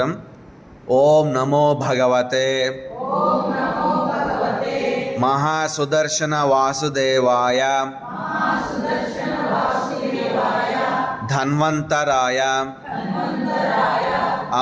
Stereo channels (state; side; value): identical; both; correlation 1.00